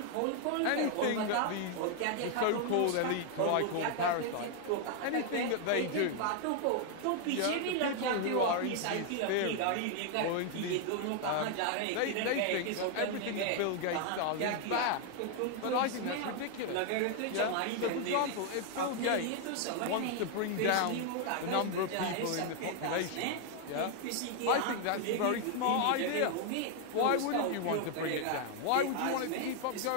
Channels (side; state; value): both; different; correlation 0.00